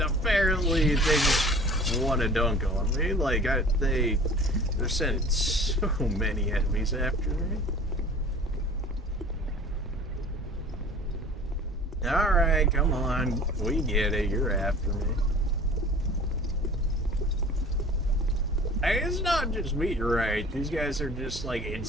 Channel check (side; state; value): both; normal; correlation 0.44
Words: apparently they just want to dunk on me. Like, they're sending so many enemies after me. Alright, come on. We get it. You're after me. Hey, it's not just me, right? These guys are just, like,